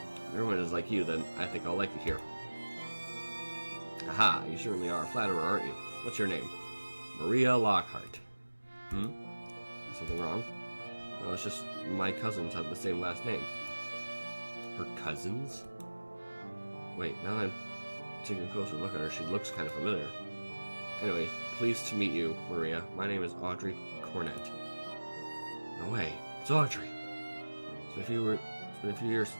If everyone is like you, then I think I'll like it here. Aha, you certainly are a flatterer, aren't you? What's your name? Maria Lockhart. Is something wrong? No, it's just my cousins have the same last name. Her cousins? Wait, now that I'm taking a closer look at her, she looks kind of familiar. Anyway, pleased to meet you, Maria. My name is Audrey Cornett. No way, it's Audrey. It's been a few years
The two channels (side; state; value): both; inverted; correlation -1.00